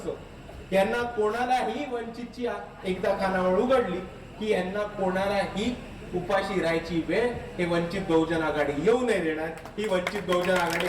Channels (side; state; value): both; identical; correlation 1.00